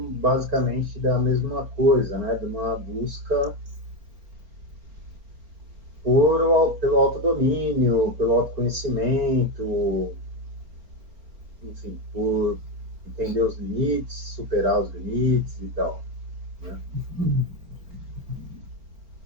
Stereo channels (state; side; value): late; left; 4.3 ms